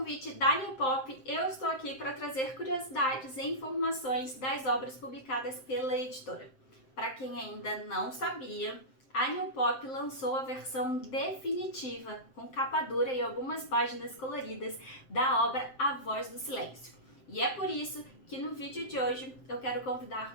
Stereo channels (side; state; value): right; late; 7.7 ms